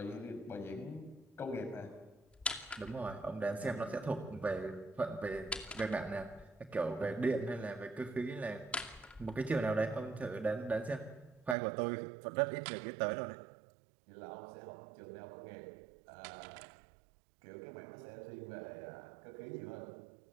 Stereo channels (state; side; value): drops out; left; at 11.6 s